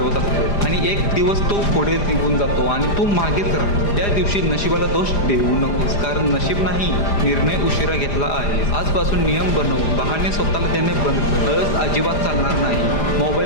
असतो आणि एक दिवस तो पुढे निघून जातो आणि तू मागेच राहतो. त्या दिवशी नशिबाला दोष देऊ नकोस, कारण नशीब नाही, निर्णय उशिरा घेतला आहे. आजपासून नियम बनव, बहाणे स्वतःला देणे बंद कर. आळस अजिबात चालणार नाही.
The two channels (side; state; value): right; late; 4.9 ms